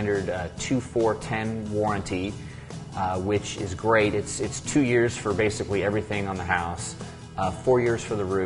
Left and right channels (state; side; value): identical; both; correlation 1.00